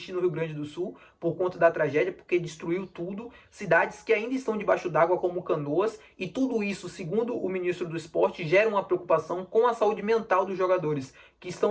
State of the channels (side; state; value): both; identical; correlation 1.00